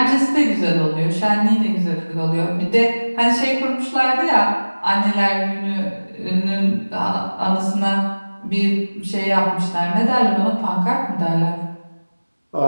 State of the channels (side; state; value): both; inverted; correlation -1.00